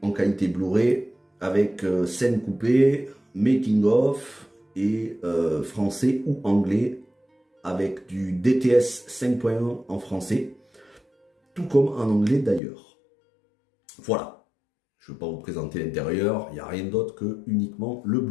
qualité Blu-ray avec scènes coupées, making of et français ou anglais avec du DTS 5.1 en français, tout comme en anglais d'ailleurs. Voilà, je ne vais pas vous présenter l'intérieur, il n'y a rien d'autre que uniquement le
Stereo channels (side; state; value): right; drops out; at 12.6 s